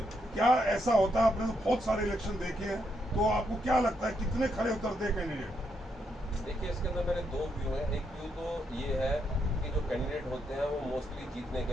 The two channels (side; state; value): both; normal; correlation 0.78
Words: क्या ऐसा होता है? आपने तो बहुत सारे इलेक्शन देखे हैं, तो आपको क्या लगता है कितने खरे उतरते हैं कैंडिडेट? देखिए, इसके अंदर मेरे दो व्यू हैं। एक व्यू तो ये है कि जो कैंडिडेट होते हैं वो मोस्टली जीतने